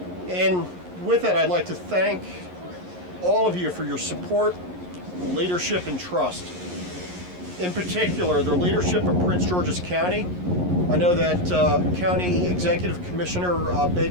And with that, I'd like to thank all of you for your support, leadership, and trust. In particular, the leadership of Prince George's County. I know that County Executive Commissioner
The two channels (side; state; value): left; late; 11 ms